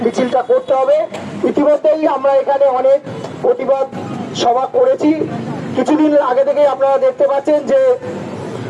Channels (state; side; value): identical; both; correlation 1.00